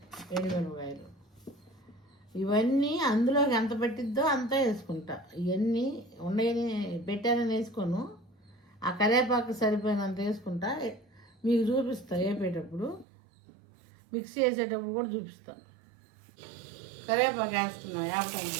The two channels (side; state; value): left; drops out; at 13.1 s